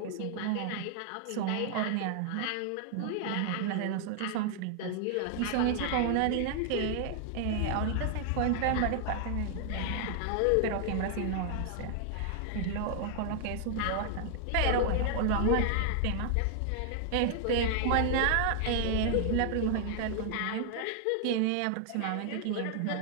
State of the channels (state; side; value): different; both; correlation 0.00